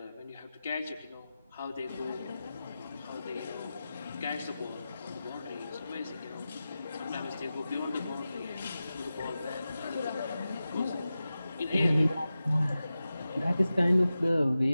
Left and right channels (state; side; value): inverted; both; correlation -0.94